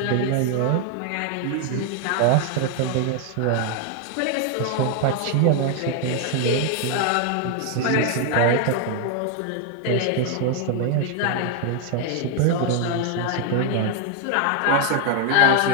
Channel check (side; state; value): both; different; correlation 0.01